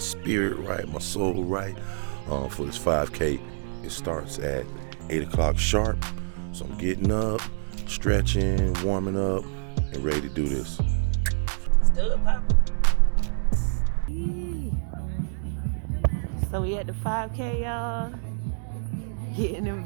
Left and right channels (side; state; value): left; silent; digital silence